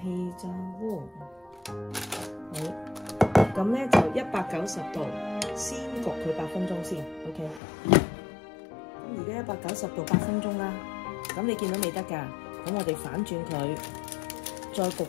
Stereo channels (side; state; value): right; drops out; at 7.6 s